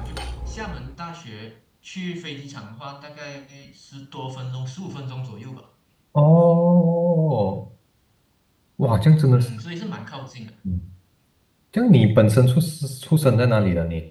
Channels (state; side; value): identical; both; correlation 1.00